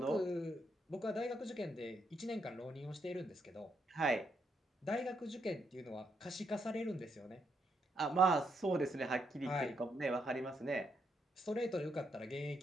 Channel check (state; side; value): normal; both; correlation 0.77